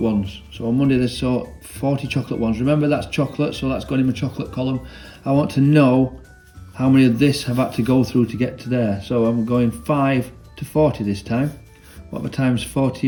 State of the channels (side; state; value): both; identical; correlation 1.00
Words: So on Monday they sold 40 chocolate ones. Remember, that's chocolate, so that's gone in my chocolate column. I want to know how many of this have had to go through to get to there. So I'm going 5 to 40 this time. What am I times